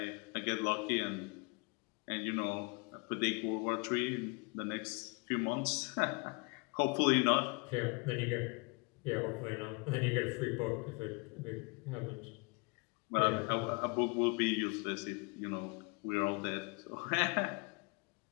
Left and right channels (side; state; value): right; quieter; 30.9 dB